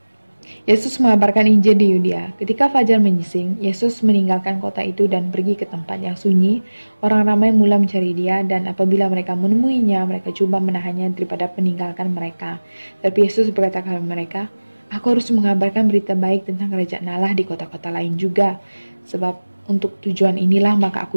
Yesus mengabarkan Injil di Yudea. Ketika fajar menyising, Yesus meninggalkan kota itu dan pergi ke tempat yang sunyi. Orang ramai mula mencari dia, dan apabila mereka menemuinya, mereka coba menahannya daripada meninggalkan mereka. Tapi Yesus berkata kepada mereka, aku harus mengabarkan berita baik tentang kerajaan Allah di kota-kota lain juga. Sebab untuk tujuan inilah maka aku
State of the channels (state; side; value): inverted; both; correlation -1.00